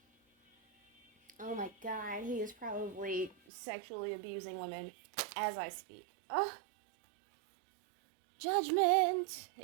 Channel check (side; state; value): left; drops out; at 3.4 s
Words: Oh my god, he is probably sexually abusing women as I speak. Oh, judgment.